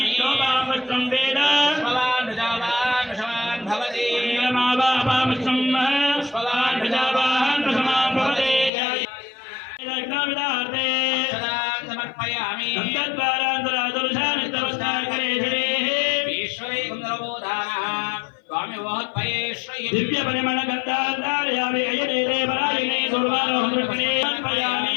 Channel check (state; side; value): drops out; right; at 8.7 s